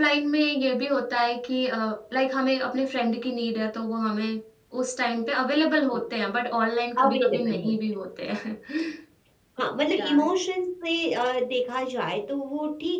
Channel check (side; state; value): both; identical; correlation 1.00